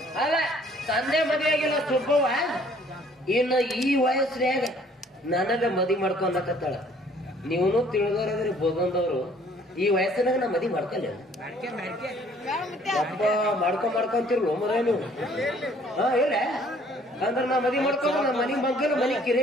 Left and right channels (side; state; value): both; normal; correlation 0.58